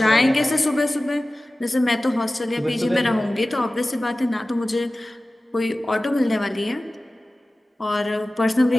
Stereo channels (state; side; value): normal; both; correlation 0.97